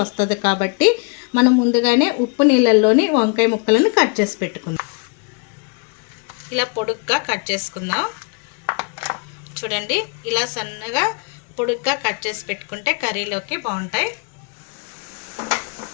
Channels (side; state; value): right; quieter; 35.8 dB